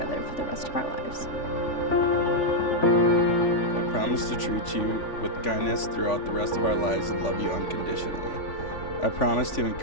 for the rest of our lives. I promise to treat you with kindness throughout the rest of our lives and love you unconditionally. I promise to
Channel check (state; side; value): late; right; 3.5 ms